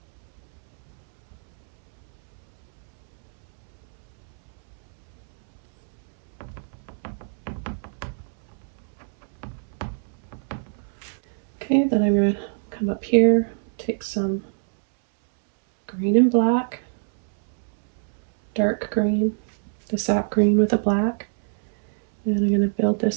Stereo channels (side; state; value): left; silent; 62 dB below the other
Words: Okay, then I'm going to come up here, take some green and black, dark green, the sap green with a black, and I'm going to build